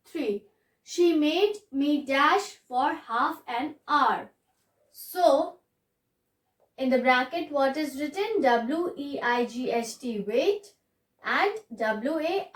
3. She made me dash for half an hour. So, in the bracket what is written? W-E-I-G-H-T, wait, and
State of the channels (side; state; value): both; identical; correlation 1.00